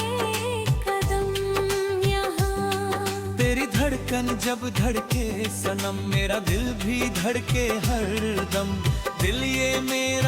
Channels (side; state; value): both; identical; correlation 1.00